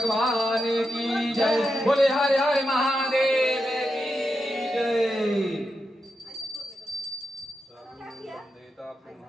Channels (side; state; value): both; normal; correlation 0.87